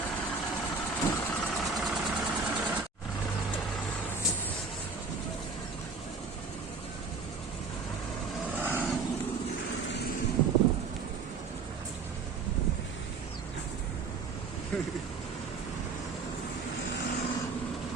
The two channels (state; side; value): quieter; left; 4.7 dB